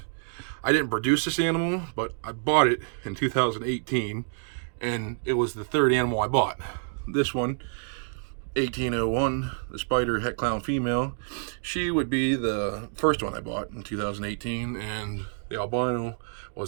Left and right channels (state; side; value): silent; left; digital silence